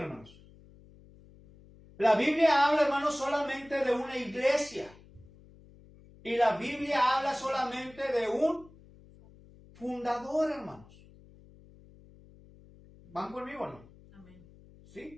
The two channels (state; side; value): noise; left; hum, 24 dB below the sound